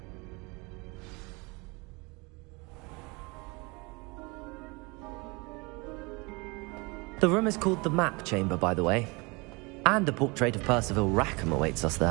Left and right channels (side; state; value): left; quieter; 27.3 dB